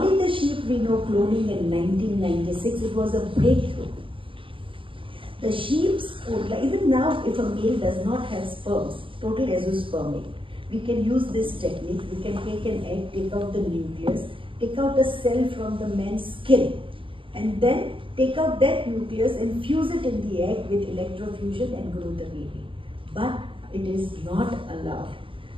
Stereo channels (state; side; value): late; left; 0.25 ms